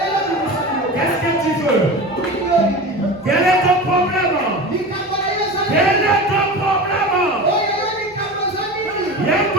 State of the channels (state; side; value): normal; both; correlation 0.30